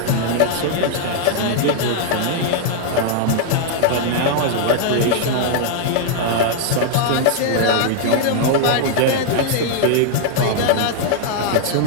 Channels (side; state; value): both; different; correlation -0.01